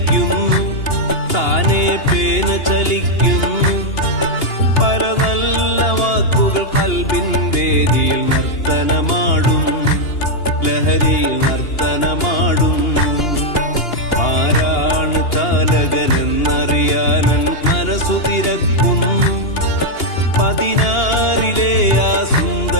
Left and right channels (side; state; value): right; late; 2.8 ms